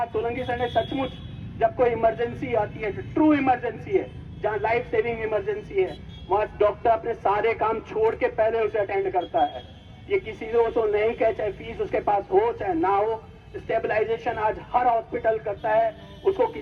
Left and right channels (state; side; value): identical; both; correlation 1.00